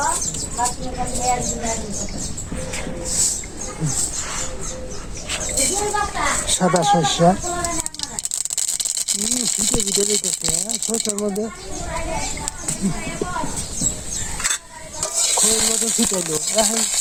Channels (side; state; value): both; identical; correlation 1.00